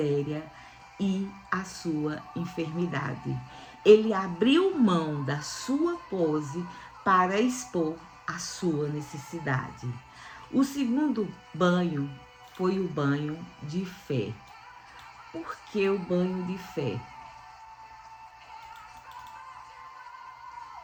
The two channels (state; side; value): identical; both; correlation 1.00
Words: e a sua enfermidade. Ele abriu mão da sua pose para expor a sua necessidade. O segundo banho foi o banho de fé. Por que o banho de fé?